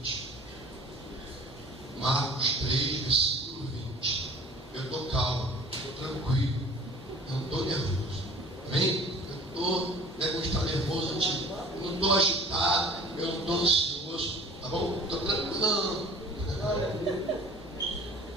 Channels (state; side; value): normal; both; correlation 0.47